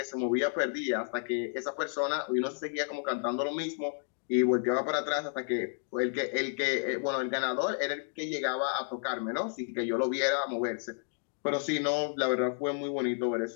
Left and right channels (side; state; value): right; silent; 57 dB below the other